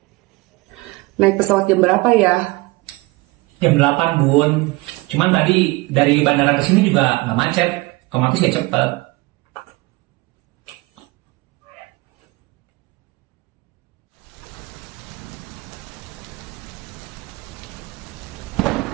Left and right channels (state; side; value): quieter; left; 23.0 dB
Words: Naik pesawat jam berapa ya? Jam 8, Bun. Cuman tadi dari bandara ke sini juga nggak macet. Otomatis ya cepet.